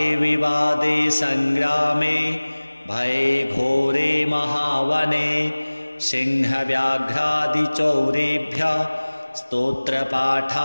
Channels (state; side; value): inverted; both; correlation -1.00